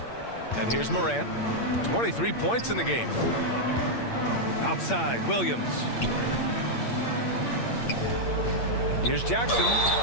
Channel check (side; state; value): right; late; 8.7 ms